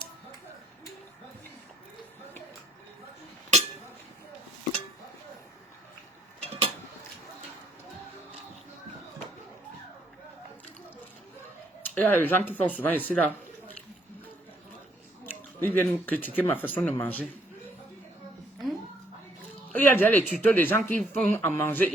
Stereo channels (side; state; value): both; normal; correlation 0.67